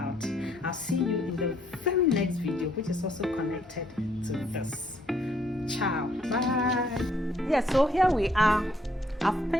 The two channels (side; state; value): both; normal; correlation 0.68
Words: I'll see you in the very next video, which is also connected to this. Ciao. Bye. Yeah, so here we are. I've